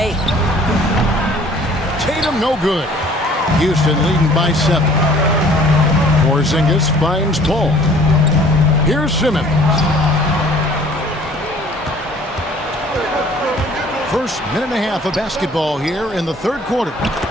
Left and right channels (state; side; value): normal; both; correlation 0.53